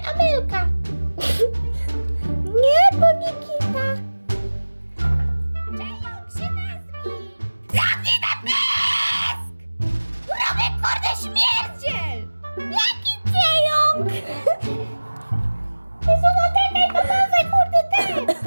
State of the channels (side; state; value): both; inverted; correlation -1.00